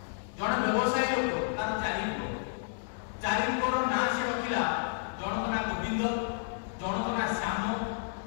ଜଣେ ବ୍ୟବସାୟୀ ଲୋକ, ତାର ଚାରିଙ୍କର ନାଁ ସେ ରଖିଲା। ଜଣଙ୍କ ନାଁ ଗୋବିନ୍ଦ, ଜଣଙ୍କ ନାଁ ଶ୍ୟାମ,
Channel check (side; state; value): right; silent; digital silence